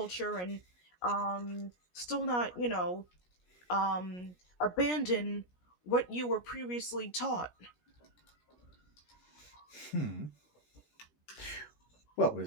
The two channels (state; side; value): late; right; 17 ms